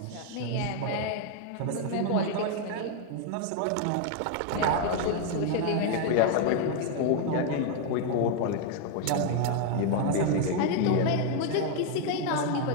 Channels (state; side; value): different; both; correlation 0.01